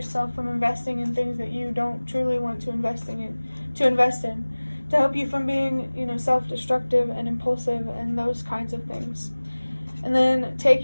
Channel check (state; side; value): inverted; both; correlation -1.00